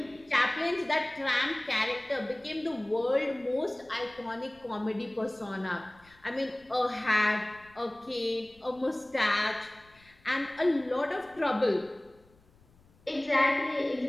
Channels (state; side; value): noise; left; rumble, 29 dB below the sound